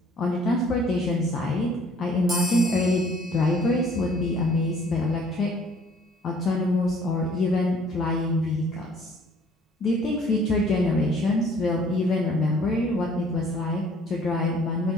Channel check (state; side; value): normal; both; correlation 0.57